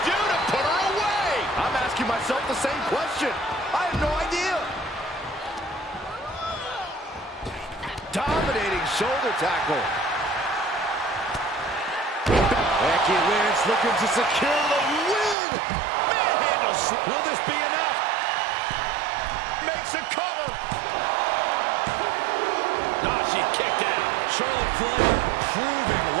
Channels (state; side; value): drops out; left; at 15.4 s